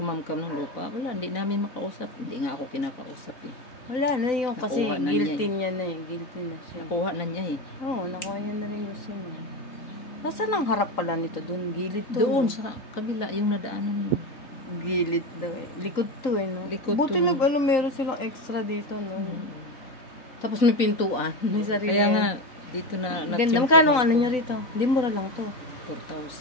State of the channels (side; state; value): right; late; 3.9 ms